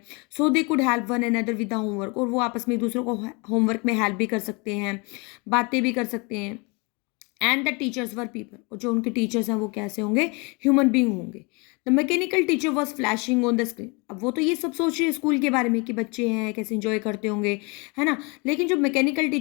So they could help one another with the homework, और वो आपस में एक दूसरे को होमवर्क में हेल्प भी कर सकते हैं, बातें भी कर सकते हैं। And the teachers were people, और जो उनके टीचर्स हैं वो कैसे होंगे, ह्यूमन बींग होंगे। The mechanical teacher was flashing on the screen, अब वो तो ये सब सोच रही है स्कूल के बारे में कि बच्चे हैं कैसे इंजॉय करते होंगे, है ना, लेकिन जो मैकेनिकल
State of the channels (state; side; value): quieter; right; 29.8 dB